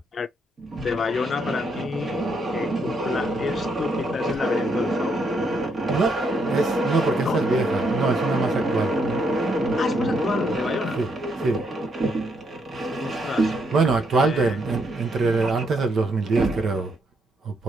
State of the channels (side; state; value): both; normal; correlation 0.76